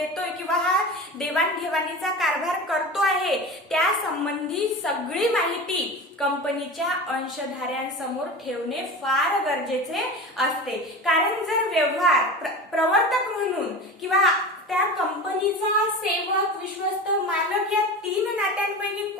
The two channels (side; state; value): both; normal; correlation 0.30